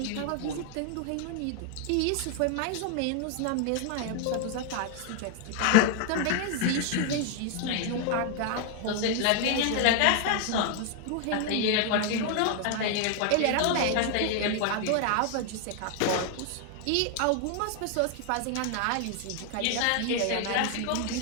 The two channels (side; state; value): both; different; correlation 0.00